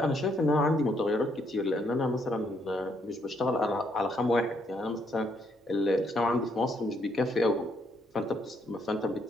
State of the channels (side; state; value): both; normal; correlation 0.72